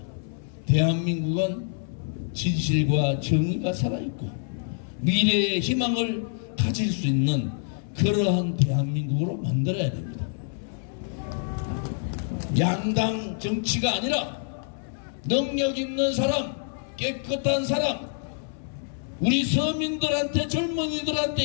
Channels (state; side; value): silent; right; 61 dB below the other